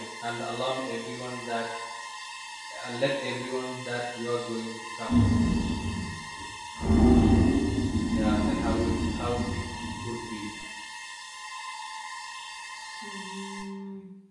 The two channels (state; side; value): identical; both; correlation 1.00